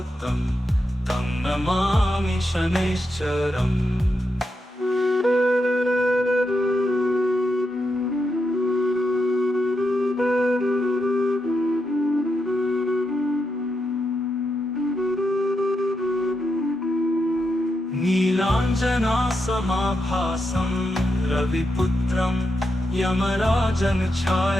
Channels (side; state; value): both; normal; correlation 0.84